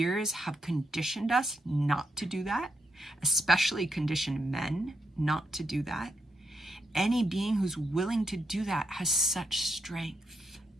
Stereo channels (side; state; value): both; normal; correlation 0.82